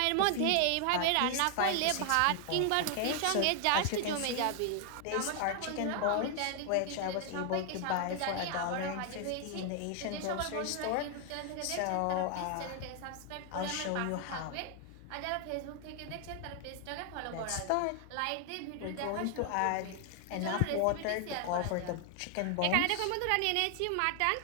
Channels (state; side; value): different; both; correlation 0.00